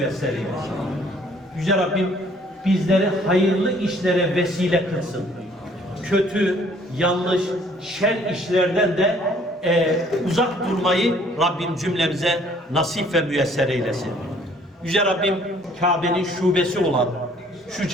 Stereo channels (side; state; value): both; normal; correlation 0.59